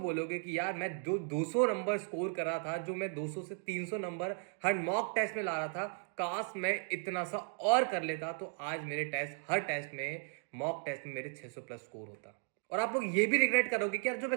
कि यार मैं 200 नंबर स्कोर कर रहा था, जो मैं 200 से 300 नंबर हर मॉक टेस्ट में ला रहा था। काश मैं इतना सा और कर लेता तो आज मेरे टेस्ट हर टेस्ट में मॉक टेस्ट में मेरे 600 प्लस स्कोर होता। और आप लोग ये भी रिग्रेट करोगे कि यार जो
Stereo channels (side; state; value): left; silent; 54 dB below the other